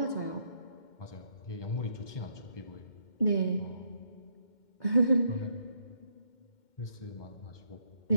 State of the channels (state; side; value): late; right; 2.1 ms